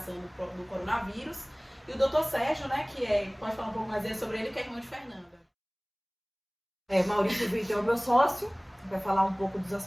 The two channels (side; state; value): both; identical; correlation 1.00